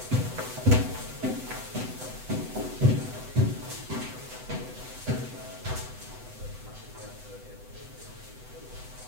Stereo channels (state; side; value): late; left; 8.0 ms